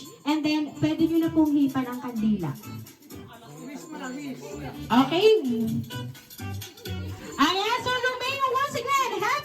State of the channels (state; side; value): identical; both; correlation 1.00